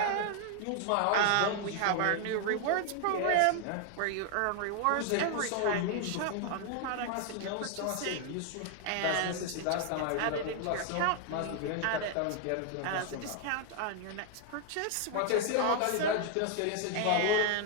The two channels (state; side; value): different; both; correlation 0.00